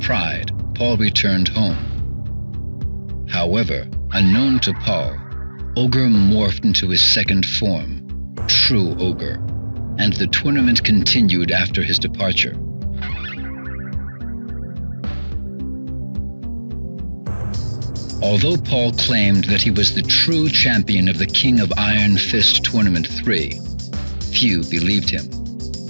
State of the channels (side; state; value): both; inverted; correlation -1.00